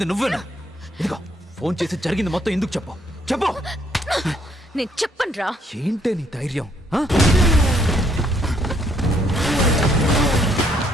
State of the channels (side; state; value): both; normal; correlation 0.68